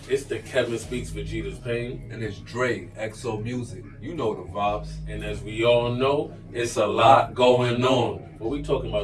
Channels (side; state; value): both; identical; correlation 1.00